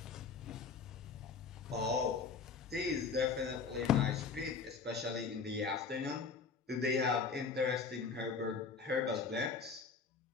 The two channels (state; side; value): quieter; right; 5.1 dB